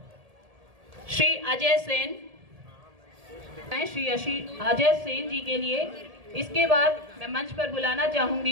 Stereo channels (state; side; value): late; left; 1.7 ms